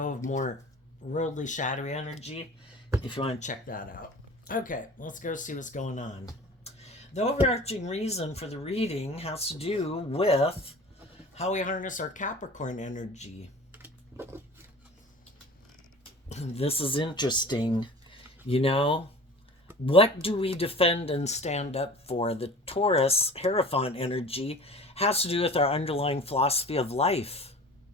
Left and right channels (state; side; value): normal; both; correlation 0.41